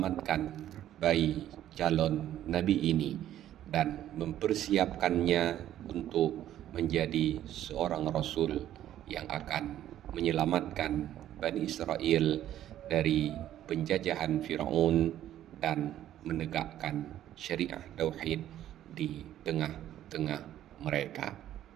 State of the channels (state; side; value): quieter; left; 12.1 dB